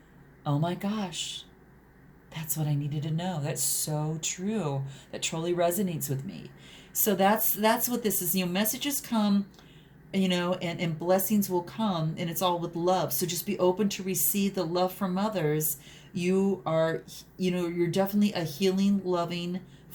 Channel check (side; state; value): both; identical; correlation 1.00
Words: oh my gosh, that's what I needed to know. That's so true. That totally resonates with me. So that's what this is. Messages come, and blessings will come, and it's all with love. So just be open to receive the love from others. You are, you're definitely a healing, loving